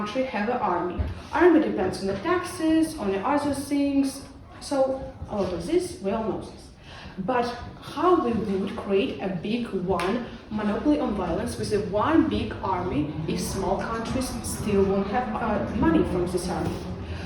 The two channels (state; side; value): identical; both; correlation 1.00